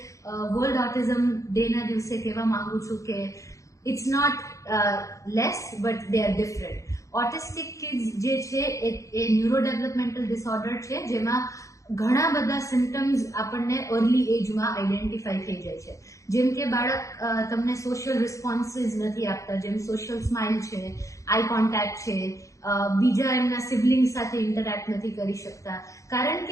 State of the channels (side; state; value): right; late; 0.15 ms